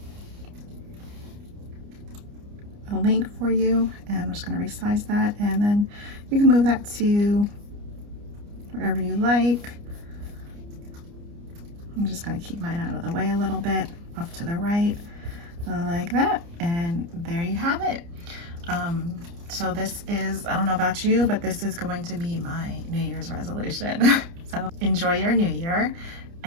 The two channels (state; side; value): late; left; 29 ms